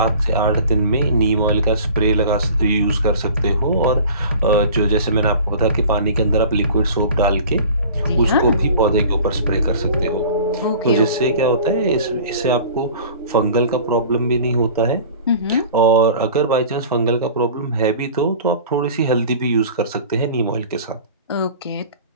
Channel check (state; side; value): inverted; both; correlation -0.43